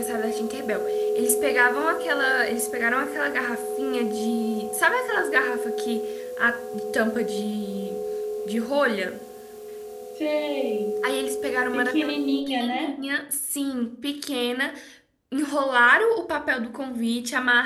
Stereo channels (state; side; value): identical; both; correlation 1.00